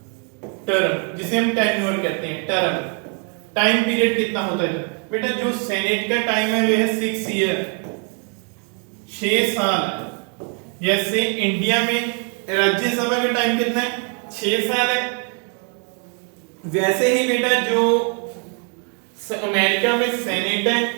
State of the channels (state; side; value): quieter; left; 39.8 dB